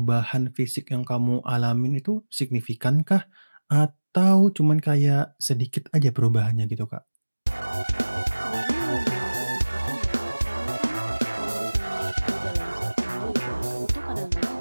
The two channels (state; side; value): inverted; both; correlation -1.00